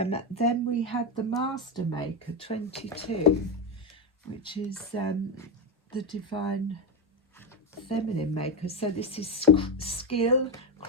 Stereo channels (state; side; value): normal; both; correlation 0.08